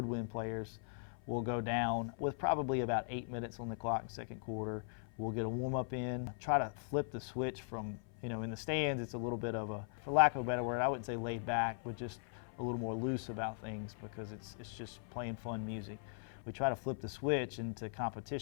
players, will go down with probably about 8 minutes on the clock in second quarter. We'll get a warm-up in, try to flip the switch from, in the stands, it's a little bit of for lack of a better word, I wouldn't say laid back, we're just a little more loose about things because it's just plain fun music. We try to flip the switch into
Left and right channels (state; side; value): silent; right; 51 dB below the other